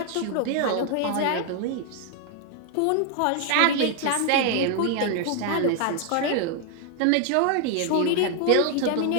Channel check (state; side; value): different; both; correlation 0.00